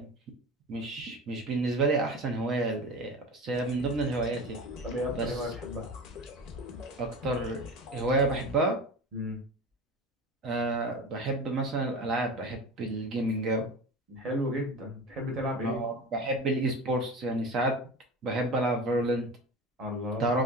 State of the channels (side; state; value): both; normal; correlation 0.32